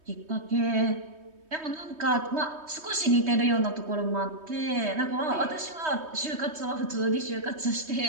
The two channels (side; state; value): left; late; 3.2 ms